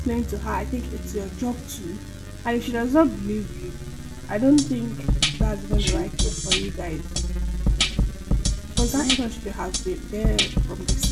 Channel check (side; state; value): both; identical; correlation 1.00